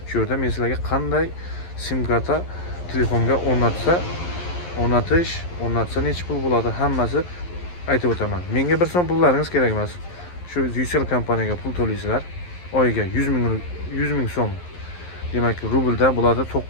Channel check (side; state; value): right; late; 11 ms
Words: Shu yerda men sizlarga qanday sim karta telefonga o'rnatsa necha pul bo'ladi, hammasi aytib o'taman. Menga 1 so'm pullaringiz kerak emas. Shu Ucell kompaniyaga pul to'laysizlar. Oyiga 100 ming so'm. Demak, rublda bo'ladi